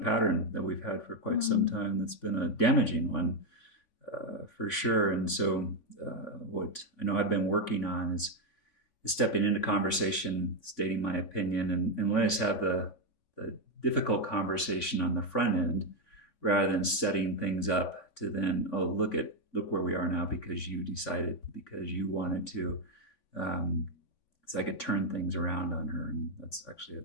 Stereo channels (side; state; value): right; late; 3.5 ms